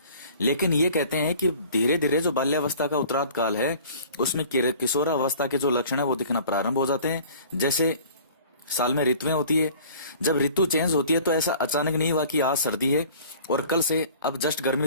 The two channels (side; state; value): both; inverted; correlation -0.48